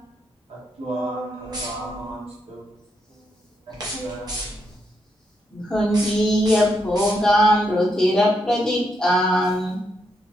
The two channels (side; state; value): both; normal; correlation 0.79